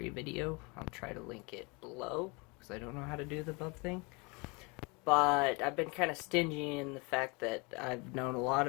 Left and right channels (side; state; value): right; quieter; 28.9 dB